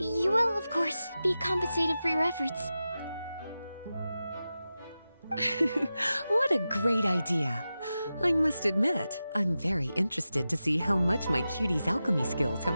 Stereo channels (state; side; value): inverted; both; correlation -0.93